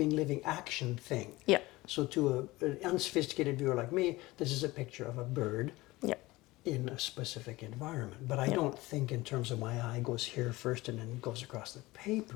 living action thing. Yeah. So to an unsophisticated viewer like me, this is a picture of a bird Yeah. in a specific environment. But I don't think in terms of my eye goes here first and then goes across the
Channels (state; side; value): quieter; right; 20.0 dB